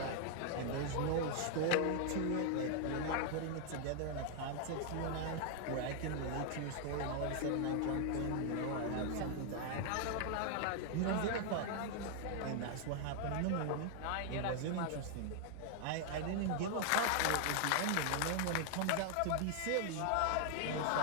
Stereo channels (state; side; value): different; both; correlation 0.00